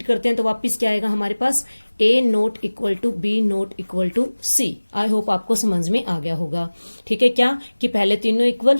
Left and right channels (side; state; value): both; inverted; correlation -1.00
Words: करते हैं तो वापिस क्या आएगा हमारे पास? A not equal to B not equal to C। I hope आपको समझ में आ गया होगा, ठीक है। क्या कि पहले तीनों इक्वल,